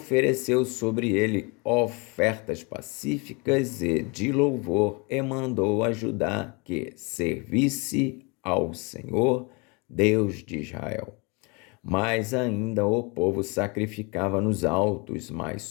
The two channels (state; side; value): quieter; right; 30.2 dB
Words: sobre ele ofertas pacíficas e de louvor, e mandou a Judá que servisse ao Senhor, Deus de Israel. Mas ainda o povo sacrificava nos altos, mas